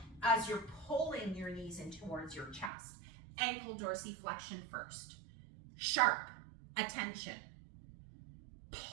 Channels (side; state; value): left; drops out; at 2.7 s